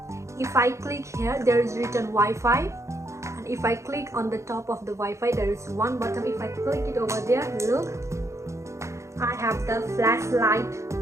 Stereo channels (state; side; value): late; left; 0.14 ms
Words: If I click here, there is written Wi-Fi. If I click on the top of the Wi-Fi, there is one button. If I click it over there, look, I have the flashlight